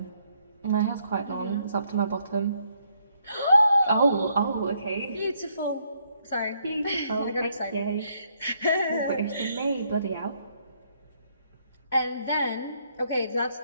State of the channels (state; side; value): inverted; both; correlation -0.72